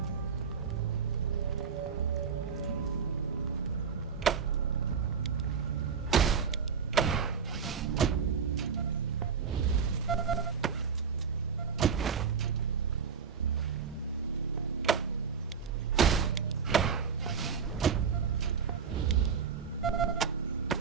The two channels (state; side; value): quieter; left; 6.4 dB